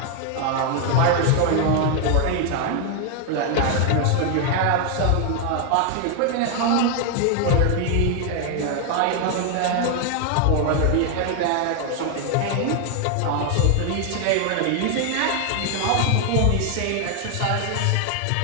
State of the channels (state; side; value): different; both; correlation 0.00